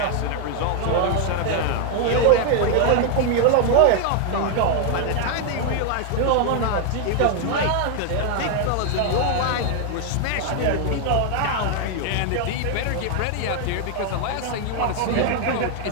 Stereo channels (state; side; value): different; both; correlation 0.00